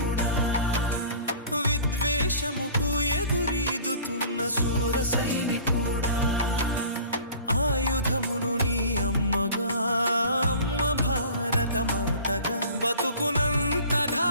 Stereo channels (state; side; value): inverted; both; correlation -0.45